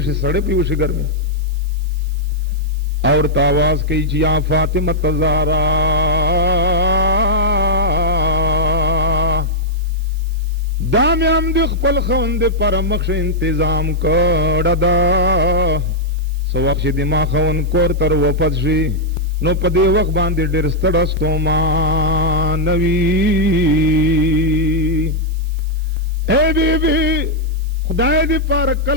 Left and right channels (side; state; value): right; noise; hiss, 25 dB below the sound